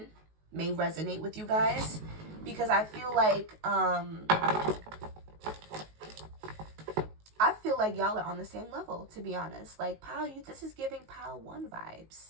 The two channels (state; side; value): late; left; 19 ms